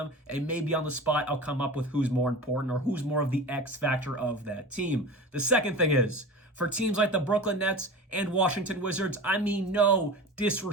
and maybe on the spot I'll come up with who's more important or who's more of the X factor of that team. The second thing is, for teams like the Brooklyn Nets and Washington Wizards, I mean no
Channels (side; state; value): both; normal; correlation 0.33